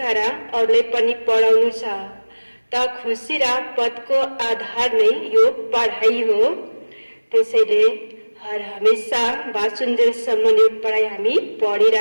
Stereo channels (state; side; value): inverted; both; correlation -1.00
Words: र अरूले पनि पढाउनु छ। त खुशी र पदको आधार नै यो पढाइ हो। त्यसैले हर हमेशा बाँचुन्जेलसम्म यो पढाइ हामी